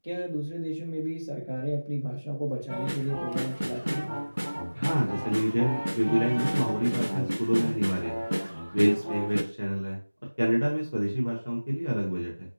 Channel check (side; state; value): both; inverted; correlation -1.00